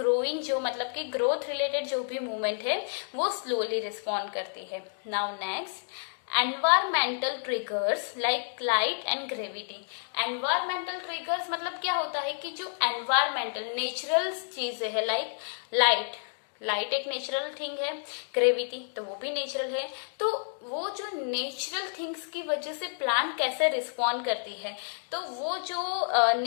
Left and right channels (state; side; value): silent; right; digital silence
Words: जो मतलब कि ग्रोथ रिलेटेड जो भी मूवमेंट है वो स्लोली रिस्पॉन्ड करती है। Now next, environmental triggers like light and gravity. Environmental triggers मतलब क्या होता है कि जो एनवायरमेंटल नेचुरल चीजें है, लाइक लाइट एक नेचुरल थिंग है, ग्रेविटी तो वो भी नेचुरल है, तो वो जो नेचुरल थिंग्स की वजह से प्लांट कैसे रिस्पॉन्ड करती है, तो वो जो